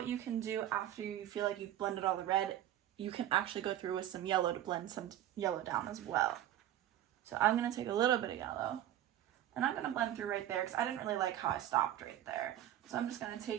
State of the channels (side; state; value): left; quieter; 12.1 dB